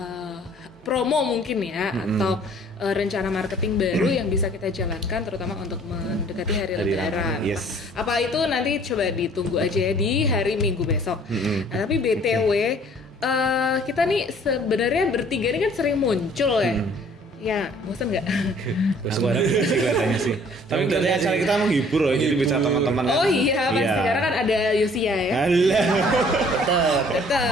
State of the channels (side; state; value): both; normal; correlation 0.56